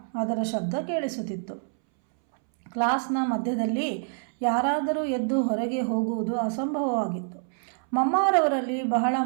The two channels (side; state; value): left; silent; 61 dB below the other